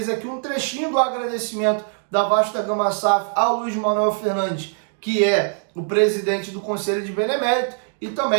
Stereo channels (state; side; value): silent; left; 64 dB below the other